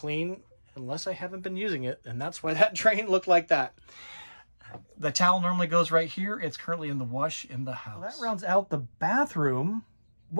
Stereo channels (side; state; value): both; inverted; correlation -1.00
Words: unless I haven't been using it, and that's why that drain looked like that. The towel normally goes right here. It's currently in the wash in the house. Well, that rounds out the bathroom.